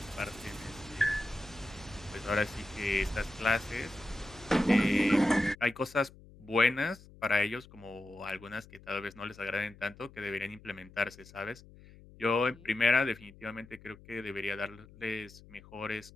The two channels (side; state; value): left; noise; hum, 21 dB below the sound